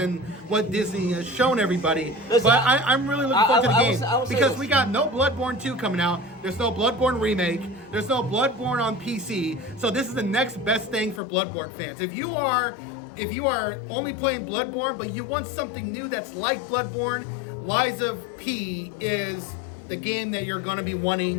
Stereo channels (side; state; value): right; drops out; at 11.2 s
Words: what Disney has shown everybody. Listen, but I'm really looking forward to the game I will say because this. we got no Bloodborne 2 coming out. There's no Bloodborne remake. There's no Bloodborne on PC. So this is the next best thing for Bloodborne fans. If you are only playing Bloodborne, but you want something new that's like Bloodborne, Liza P is the game that you're going to be